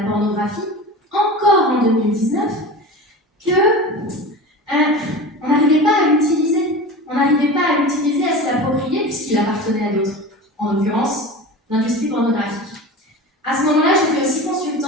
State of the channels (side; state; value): both; normal; correlation 0.32